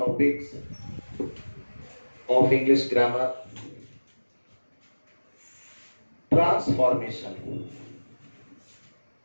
of English grammar, transformation.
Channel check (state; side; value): inverted; both; correlation -1.00